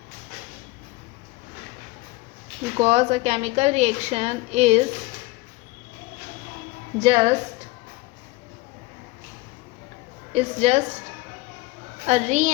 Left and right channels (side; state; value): right; quieter; 21.5 dB